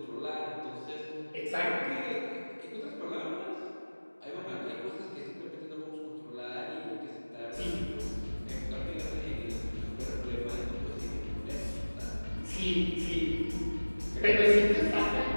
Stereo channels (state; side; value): inverted; both; correlation -1.00